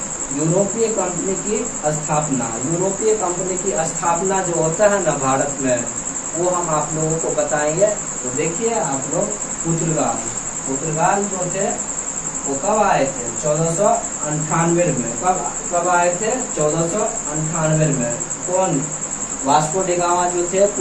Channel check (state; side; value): identical; both; correlation 1.00